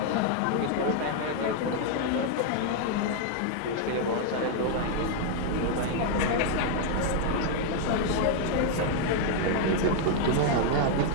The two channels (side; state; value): both; different; correlation 0.00